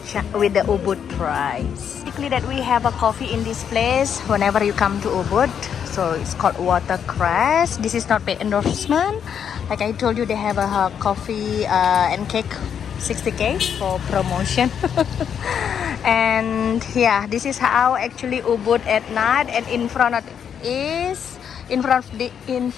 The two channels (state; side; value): quieter; right; 8.0 dB